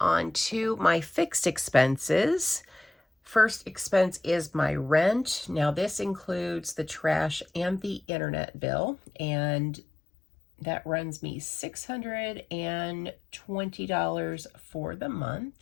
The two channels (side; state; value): right; drops out; at 8.0 s